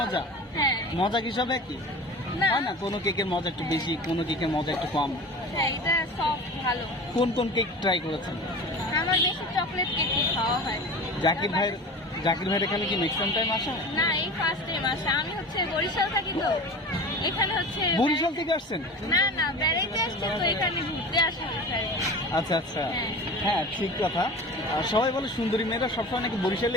হ্যাঁ। মজা কি সব একই না হয় না? কোনো কেকের মজা একটু বেশি, কোনো কেকের মজা একটু কম। হ্যাঁ, এটা সব ভালো। কোন কোন কেক ট্রাই করেছেন? আমার বেশি চকলেট কেক খাওয়া হয়। জাকির ভাইয়ের এখানে কি নেক্সট টাইম আসা? না, এই ফার্স্ট টাইম আসা। আমি হচ্ছে বরিশাল থাকি, তো এখানে হচ্ছে বরিশাল থেকে আসছেন? না না, বেড়াইতে আসছি, তো এখানে ঘুরতে আসা হচ্ছে। আচ্ছা আচ্ছা, হ্যাঁ ঠিক কথা। সবাই বলে সুন্দরী মেয়েরা সবসময় নাকি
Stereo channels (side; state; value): both; normal; correlation 0.35